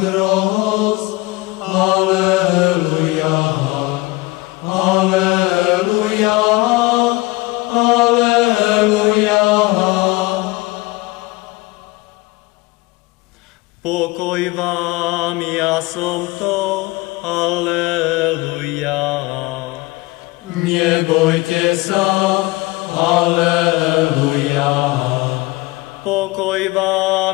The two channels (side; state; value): right; quieter; 22.0 dB